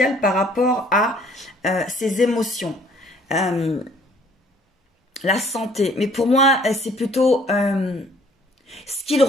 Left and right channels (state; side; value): normal; both; correlation 0.58